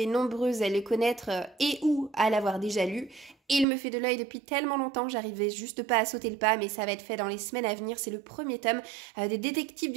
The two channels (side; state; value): left; drops out; at 3.7 s